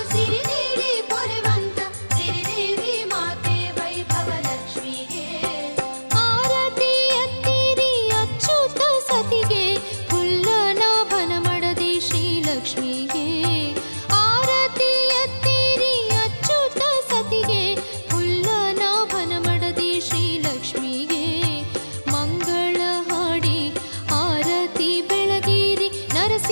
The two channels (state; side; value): inverted; both; correlation -1.00